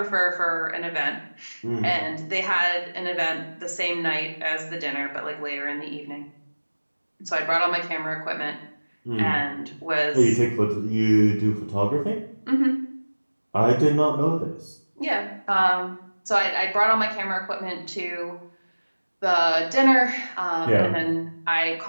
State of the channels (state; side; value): inverted; both; correlation -1.00